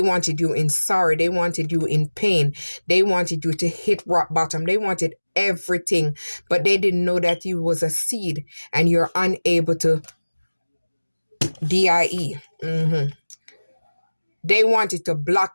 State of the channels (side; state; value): both; inverted; correlation -1.00